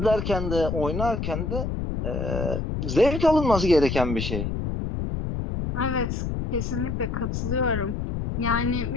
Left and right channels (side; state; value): left; noise; rumble, 2 dB below the sound